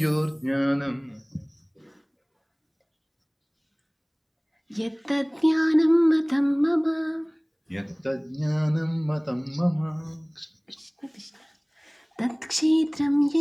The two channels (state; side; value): identical; both; correlation 1.00